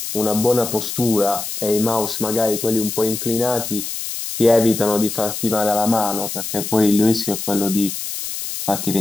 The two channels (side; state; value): left; noise; hiss, 6 dB below the sound